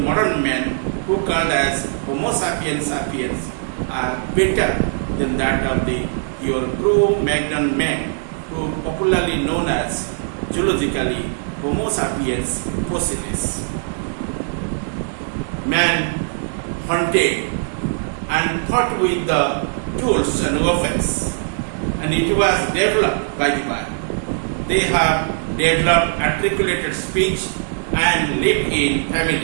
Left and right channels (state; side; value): silent; left; digital silence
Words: men who called as Homo sapiens sapiens are better than that of the your Cro-Magnon men, who popularly known as zoologically Homo sapiens fossilis. Man hunted and fought with the tools and weapons, and it was developed by the man. They have developed articulated speech and lived in